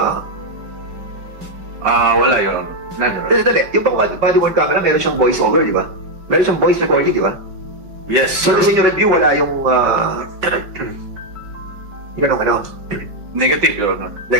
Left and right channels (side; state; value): left; late; 5.2 ms